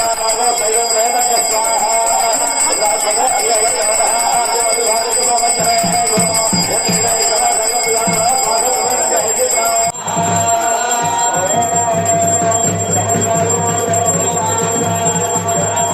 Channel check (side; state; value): both; identical; correlation 1.00